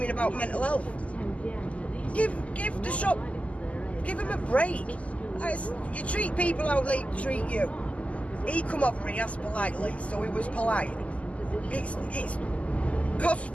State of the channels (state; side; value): late; right; 0.066 ms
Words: about mental health. Give the shop, give them a break. You treat people how they treat you. He come over and he asked politely, so he was polite. It's costs